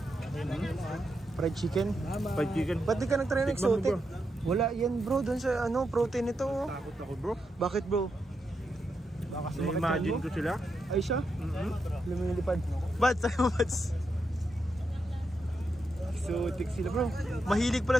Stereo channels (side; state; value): both; normal; correlation 0.84